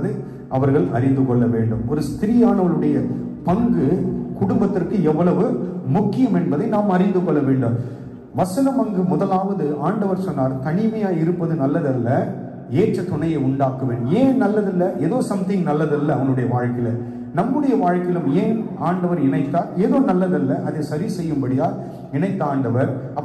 அவர்கள் அறிந்து கொள்ள வேண்டும். ஒரு ஸ்திரீயானவளுடைய பங்கு குடும்பத்திற்கு எவ்வளவு முக்கியம் என்பதை நாம் அறிந்து கொள்ள வேண்டும். வசனம் அங்கு முதலாவது ஆண்டவர் சொன்னார், தனிமையா இருப்பது நல்லதல்ல, ஏற்ற துணையை உண்டாக்குவேன். ஏன் நல்லதில்லை? ஏதோ சம்திங் நல்லதல்ல அவனுடைய வாழ்க்கையில. நம்முடைய வாழ்க்கையிலும் ஏன் ஆண்டவர் இணைத்தார்? ஏதோ நல்லதல்ல, அதை சரி செய்யும்படியா இணைத்த ஆண்டவர்.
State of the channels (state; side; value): identical; both; correlation 1.00